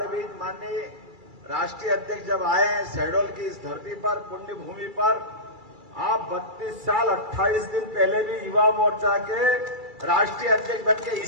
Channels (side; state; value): left; late; 2.3 ms